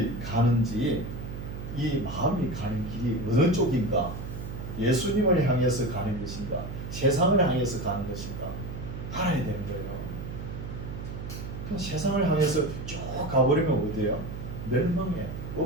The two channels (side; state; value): right; noise; hum, 7 dB below the sound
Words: 가는지 이 마음이 가는 길이 어느 쪽인가 예수님을 향해서 가는 것인가 세상을 향해서 가는 것인가 알아야 되는 거예요. 그럼 세상을 향해서 쭉 가버리면 어디예요? 멸망의